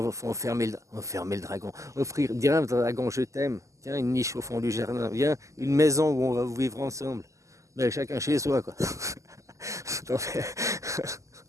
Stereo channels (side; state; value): left; late; 0.16 ms